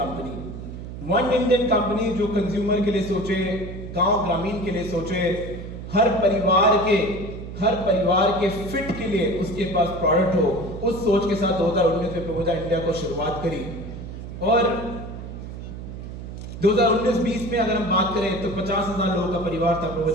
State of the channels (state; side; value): noise; right; hum, 10 dB below the sound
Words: One Indian company जो consumer के लिए सोचे, गांव ग्रामीण के लिए सोचे, हर परिवार के फिट के लिए उसके पास प्रोडक्ट हो, उस सोच के साथ 2019 में प्रोविडा इंडिया को शुरुआत करी। और 2019-20 में अगर हम बात करें तो 50,000 लोगों का परिवार था